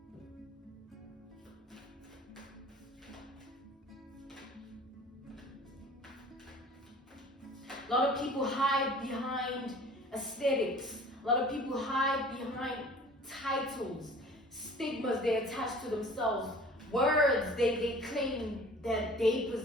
A lot of people hide behind aesthetics. A lot of people hide behind titles, stigmas they attach to themselves, words they claim that they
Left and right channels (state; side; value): normal; both; correlation 0.47